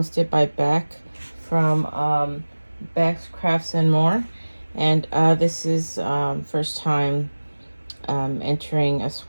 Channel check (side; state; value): both; inverted; correlation -1.00